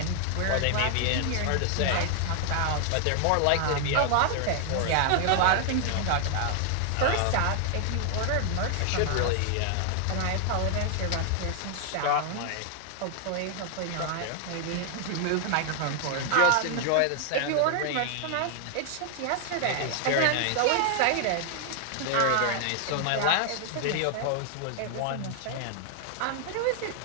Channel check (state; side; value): different; both; correlation 0.00